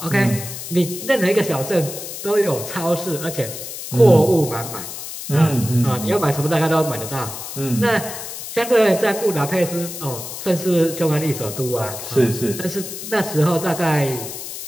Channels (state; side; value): noise; left; hiss, 9 dB below the sound